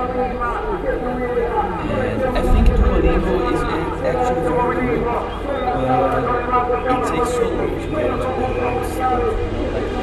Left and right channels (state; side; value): identical; both; correlation 1.00